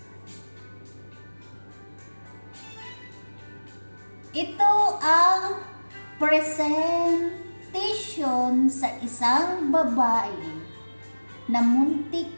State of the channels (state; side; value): inverted; both; correlation -1.00